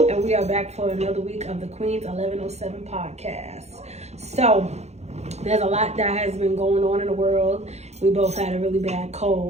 And we are back for another week of the Queen's 1107 podcast. So, there's a lot that has been going on in the world. We both had a really bad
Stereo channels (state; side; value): late; left; 0.32 ms